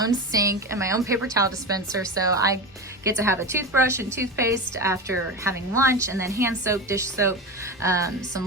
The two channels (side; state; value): both; normal; correlation 0.22